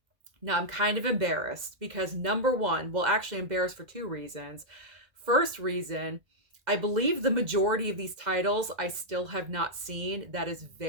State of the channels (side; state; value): left; late; 2.0 ms